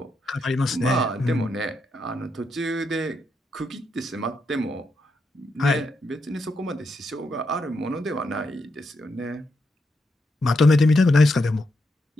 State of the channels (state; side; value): normal; both; correlation 0.82